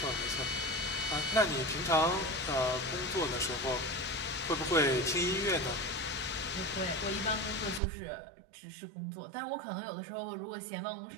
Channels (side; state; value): left; drops out; at 7.8 s